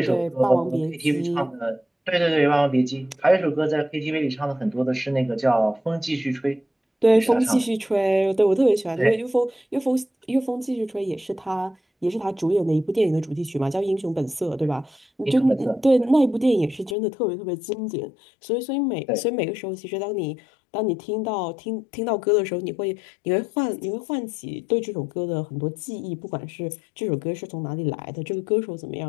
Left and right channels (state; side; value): drops out; right; at 16.9 s